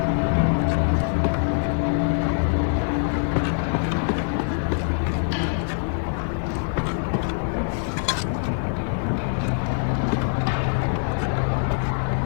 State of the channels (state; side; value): silent; right; digital silence